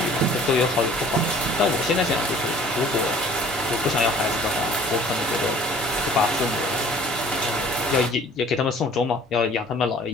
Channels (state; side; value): normal; both; correlation 0.51